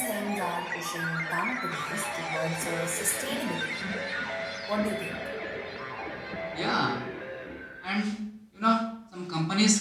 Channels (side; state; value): both; identical; correlation 1.00